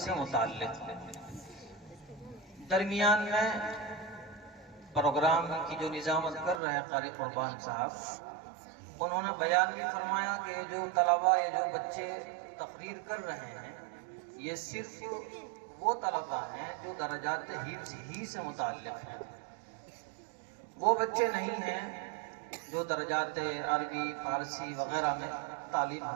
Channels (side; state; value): left; drops out; at 6.6 s